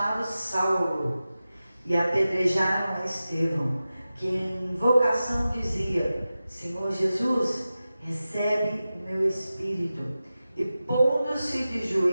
Saulo, e apedrejaram a Estevão, que em invocação dizia: Senhor Jesus, recebe o meu espírito. E pondo-se de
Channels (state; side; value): inverted; both; correlation -0.94